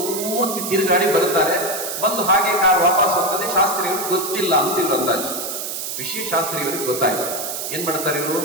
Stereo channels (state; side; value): noise; right; hiss, 5 dB below the sound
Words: ತಿರುಗಾಡಿ ಬರ್ತಾರೆ. ಬಂದು ಹಾಗೆ ಕಾರ್ ವಾಪಸ್ ಹೋಗ್ತದೆ. ಶಾಸ್ತ್ರಿಯವರಿಗೆ ಗೊತ್ತಿಲ್ಲ ಅಂತ ಇವ್ರು ಅಂದಾಜು. ವಿಷಯ ಶಾಸ್ತ್ರಿಯವರಿಗೆ ಗೊತ್ತಾಯ್ತು. ಏನ್ ಮಾಡ್ತಾರೆ ಇವರು?